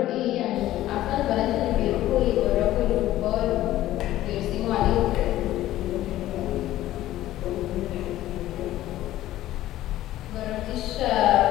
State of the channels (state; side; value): quieter; right; 14.5 dB